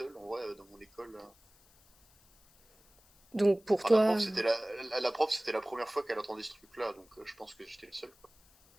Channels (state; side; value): noise; left; hiss, 29 dB below the sound